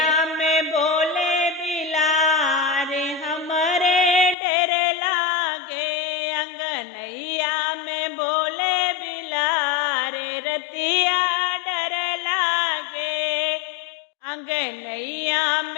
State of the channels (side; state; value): right; drops out; at 4.4 s